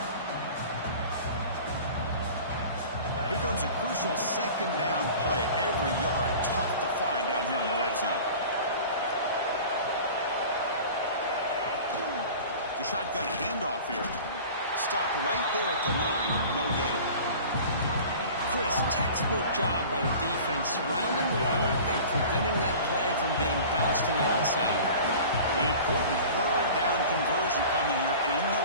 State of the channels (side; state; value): both; inverted; correlation -0.40